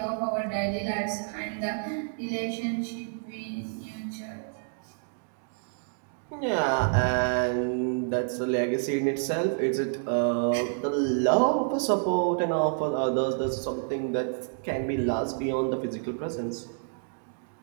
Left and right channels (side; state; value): left; silent; digital silence